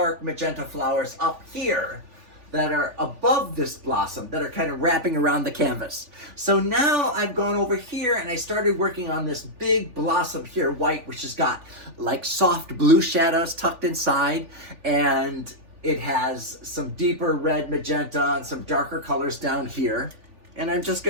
magenta flowers up here that are above this blossom, that are kind of wrapping around the canvas. So now I've gone over here and I started working on this big blossom here, white, which has got like soft blue shadows tucked inside, and it has some deeper red magenta and some darker colors down here. And I'm just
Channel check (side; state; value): left; late; 3.4 ms